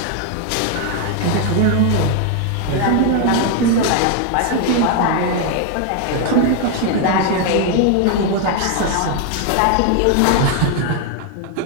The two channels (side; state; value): both; different; correlation 0.01